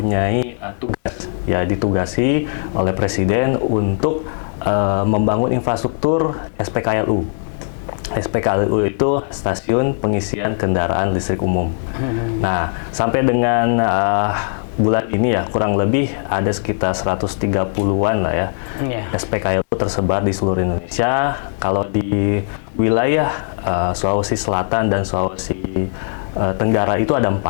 tugas, ya, ditugasi oleh Presiden untuk membangun infrastruktur SPKLU. SPKLU itu stasiun pengisian kendaraan listrik umum. Nah, sampai dengan bulan ini ya, kurang lebih ada sekitar 130-an lah ya, SPKLU tersebar di seluruh Indonesia. Kalau di wilayah Sulawesi Selatan dan Sulawesi Tenggara itu ada 4.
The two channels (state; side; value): silent; right; 64 dB below the other